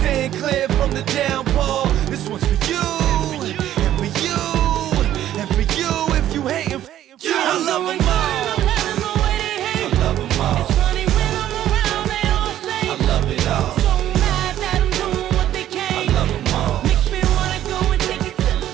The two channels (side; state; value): left; quieter; 12.2 dB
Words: staying clear from the downfall. This one's for you, and for you, and for you. If you hating, you, I love them all. I love them all. It's funny when I'm around, they all say I love it all. so mad that I'm doing what they can. I love them all. Makes me wanna go and take it to the